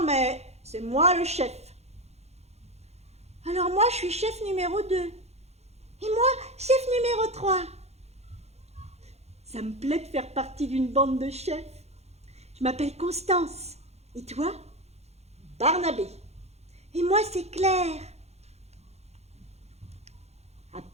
mais c'est moi le chef. »« Alors moi, je suis chef numéro 2. Et moi, chef numéro 3. »« Ça me plaît de faire partie d'une bande de chefs. Je m'appelle Constance. Et toi ? » ?»« Barnabé. »« Et moi, c'est Claire. » À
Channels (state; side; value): late; left; 0.31 ms